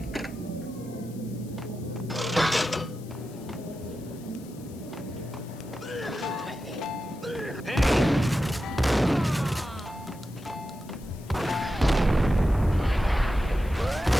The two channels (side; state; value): left; noise; hiss, 23 dB below the sound